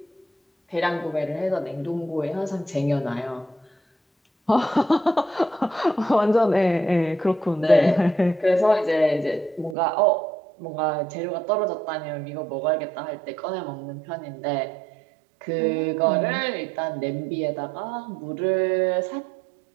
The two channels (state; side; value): drops out; left; at 9.8 s